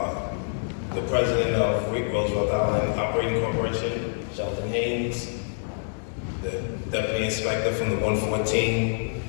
the president of Roosevelt Island Operating Corporation, Sheldon Haynes, the deputy inspector from the 114,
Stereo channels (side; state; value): right; silent; 61 dB below the other